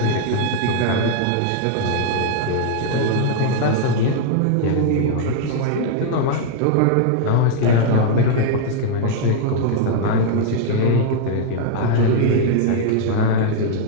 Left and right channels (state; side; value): different; both; correlation -0.01